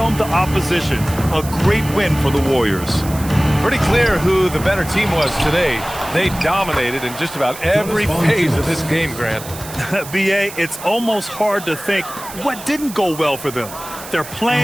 the opposition. A great win for the Warriors. Pretty clear who the better team was today. They dominated in just about every phase of this game, Grant. B.A., it's almost hard to think what didn't go well for them. Their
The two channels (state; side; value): noise; right; hiss, 14 dB below the sound